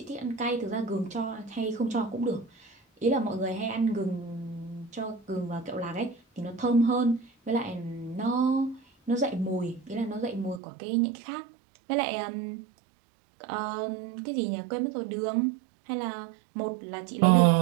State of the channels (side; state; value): left; drops out; at 10.6 s